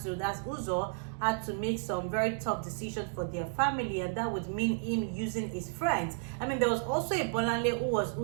Uzor, had to make some very tough decisions for their family, and that would mean him using his friends. I mean, there was also a Bolanle who was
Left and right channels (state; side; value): silent; left; 56 dB below the other